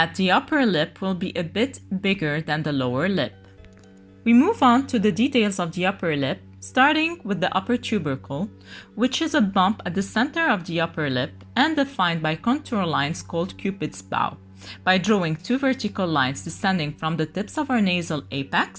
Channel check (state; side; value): identical; both; correlation 1.00